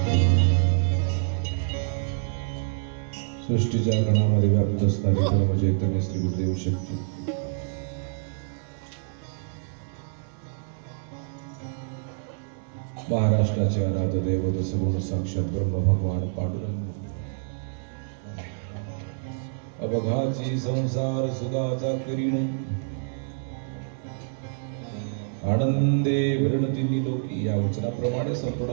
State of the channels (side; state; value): left; silent; digital silence